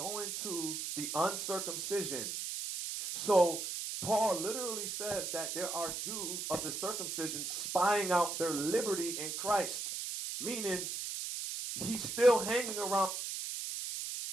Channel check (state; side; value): noise; right; hiss, 4 dB below the sound